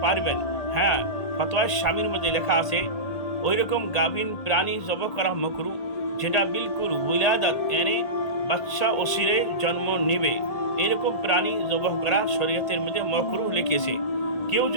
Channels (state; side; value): late; right; 1.8 ms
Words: পারবেন। হ্যাঁ, ফতোয়া শামির মধ্যে লেখা আছে ওই রকম গাভীন প্রাণী জবাহ করা মাকরু, যেটা বিলকুল উলাদাত এনে বাচ্চা ওসিরে জন্ম নেবে, এরকম প্রাণী জবাহ করা শরীয়তের মধ্যে মাকরু লিখেছে। কেউ